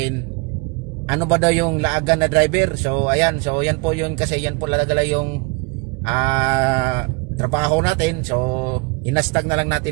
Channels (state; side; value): quieter; left; 29.8 dB